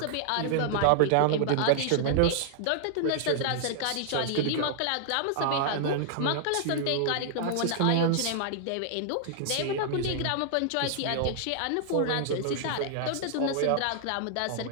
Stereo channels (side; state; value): both; different; correlation -0.01